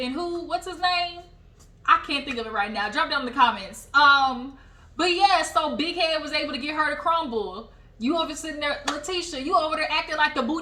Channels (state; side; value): identical; both; correlation 1.00